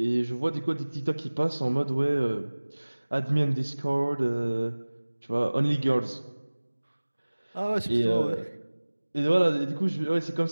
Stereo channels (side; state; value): both; inverted; correlation -1.00